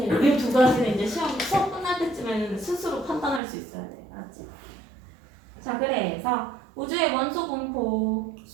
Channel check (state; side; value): drops out; left; at 3.4 s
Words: 1. 이 두 가지는 이제 수업 끝날 때쯤에는 스스로 판단할 수 있어야 돼. 알았지? 자, 그래서 우주의 원소 분포